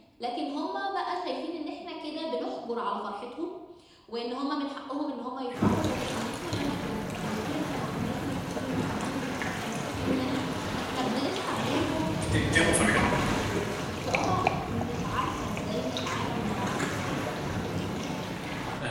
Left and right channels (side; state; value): both; identical; correlation 1.00